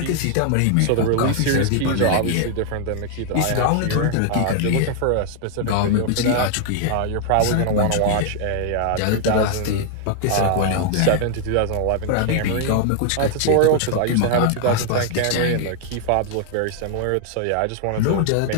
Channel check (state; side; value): different; both; correlation 0.00